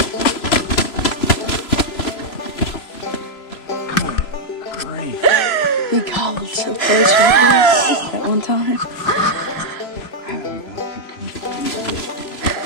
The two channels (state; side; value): late; right; 3.0 ms